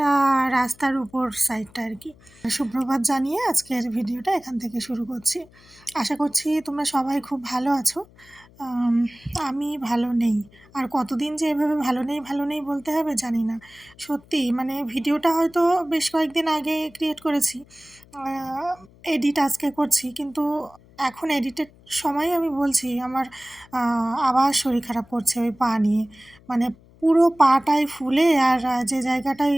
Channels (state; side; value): noise; left; hum, 26 dB below the sound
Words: রাস্তার উপর সাইডটা আর কি। সুপ্রভাত জানিয়ে আজকের ভিডিওটা এখান থেকে শুরু করছি। আশা করছি তোমরা সবাই খুব ভালো আছো। আমি ভালো নেই, আর কতদিন যে এভাবে ভালো নেই বলতে হবে জানি না। সত্যি মানে ভিডিওটা হয়তো বেশ কয়েকদিন আগে ক্রিয়েট করেছি, এডিট আজকে করছি, কিন্তু এখন এডিটের সময় আমি বলছি আমার আবার শরীর খারাপ করছে ওই পা নিয়ে। মানে পুরো পাটাই ফুলে আর যে জায়গাটায়